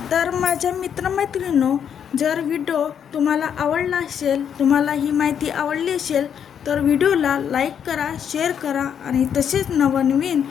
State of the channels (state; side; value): quieter; right; 8.3 dB